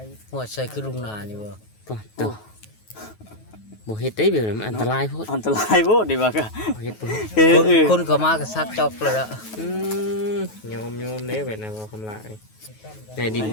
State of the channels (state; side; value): late; right; 9.3 ms